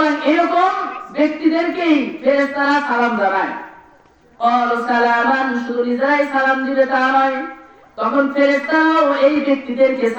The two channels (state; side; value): identical; both; correlation 1.00